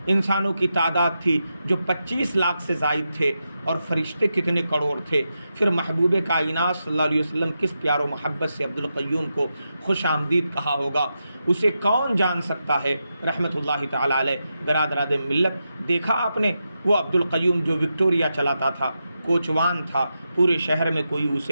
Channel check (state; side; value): inverted; both; correlation -0.87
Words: انسانوں کی تعداد تھی جو 25 لاکھ سے زائد تھے، اور فرشتے کتنے کروڑ تھے۔ پھر محبوب کائنات صلی اللہ علیہ وسلم کس پیار و محبت سے عبدالقیوم کو خوش آمدید کہا ہوگا، اسے کون جان سکتا ہے رحمۃ اللہ تعالی علیہ۔ برادران ملت، دیکھا آپ نے وہ عبدالقیوم جو وکٹوریا چلاتا تھا، کوچوان تھا، پورے شہر میں کوئی